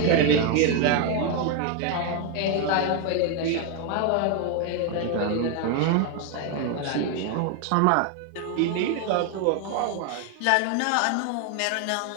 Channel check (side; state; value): both; different; correlation 0.01